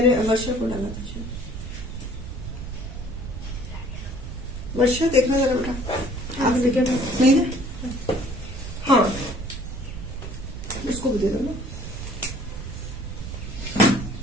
वर्षा को डाला था। वर्षा देखना जरा बेटा, आप नहीं ना? हाँ, उसको भी दे दो ना,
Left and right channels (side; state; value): right; noise; rumble, 9 dB below the sound